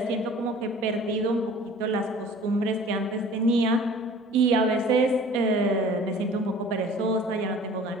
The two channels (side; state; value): both; normal; correlation 0.47